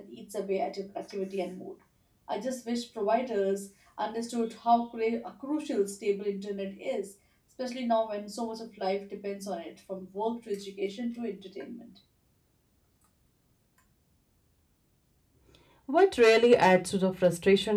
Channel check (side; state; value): both; identical; correlation 1.00